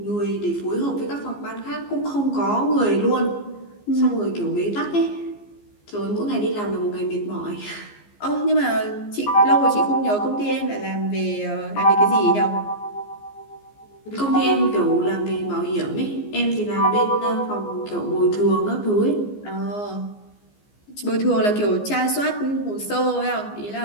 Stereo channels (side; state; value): right; late; 14 ms